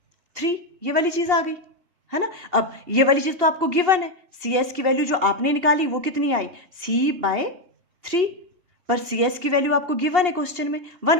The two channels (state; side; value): late; left; 2.8 ms